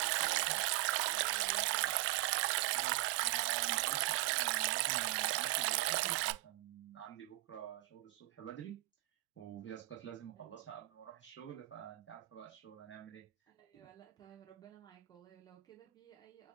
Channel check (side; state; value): left; quieter; 19.4 dB